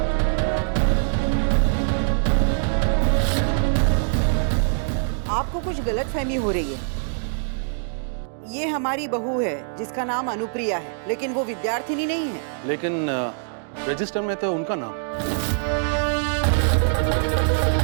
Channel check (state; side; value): silent; left; digital silence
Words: आपको कुछ गलतफहमी हो रही है। ये हमारी बहू है जिसका नाम अनुप्रिया है, लेकिन वो विद्यार्थिनी नहीं है। लेकिन रजिस्टर में तो उनका नाम।